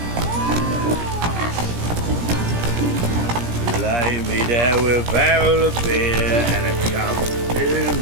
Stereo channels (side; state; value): left; late; 17 ms